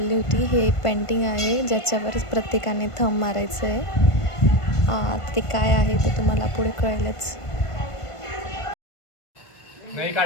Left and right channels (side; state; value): right; late; 1.5 ms